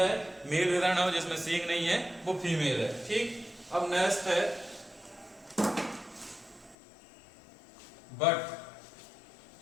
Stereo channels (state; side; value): drops out; right; at 6.8 s